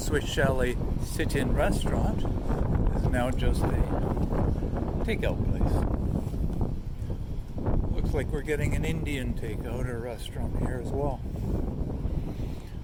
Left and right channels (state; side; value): identical; both; correlation 1.00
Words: Chalet sit-in restaurant is now just a takeout place. Looks like we're getting an Indian takeout or restaurant here as well.